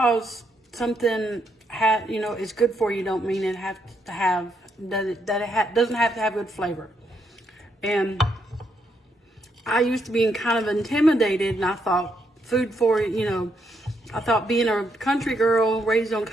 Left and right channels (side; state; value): both; normal; correlation 0.77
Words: something is good for you, don't mean it doesn't have to have good flavor. And I used to be kind of intimidated, and I thought I thought being a country girl raised on